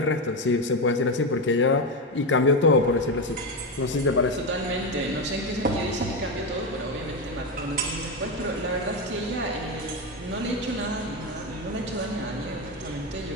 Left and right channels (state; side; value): normal; both; correlation 0.13